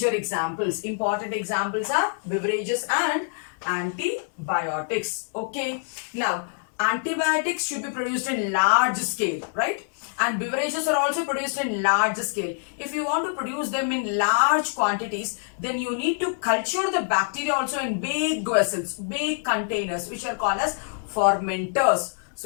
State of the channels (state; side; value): silent; right; 61 dB below the other